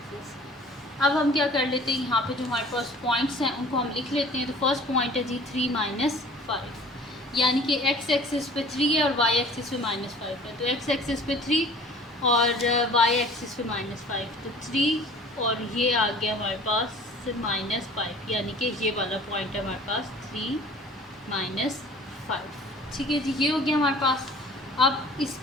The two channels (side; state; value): both; normal; correlation 0.47